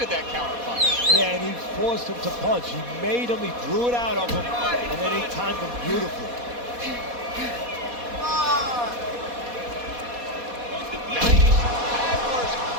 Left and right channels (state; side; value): late; left; 4.2 ms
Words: that counter punch. Yeah, and he forced him to punch. He made him, he drew it out of him, and then he timed him beautifully. 90 Hagler's